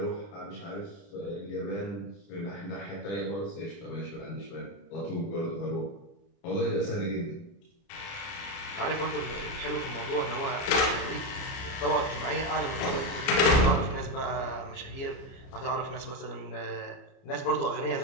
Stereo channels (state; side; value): late; right; 30 ms